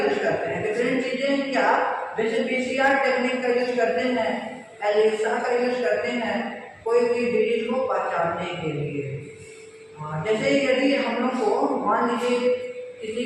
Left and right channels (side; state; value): both; identical; correlation 1.00